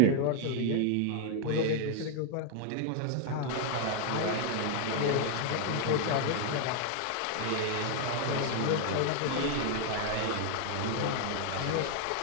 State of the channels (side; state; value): both; different; correlation 0.00